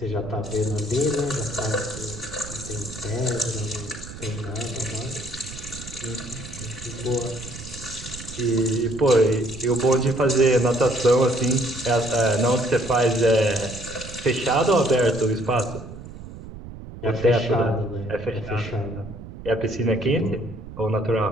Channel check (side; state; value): right; noise; rumble, 13 dB below the sound